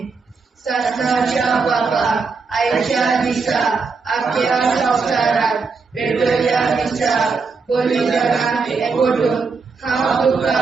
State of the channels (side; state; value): left; quieter; 4.7 dB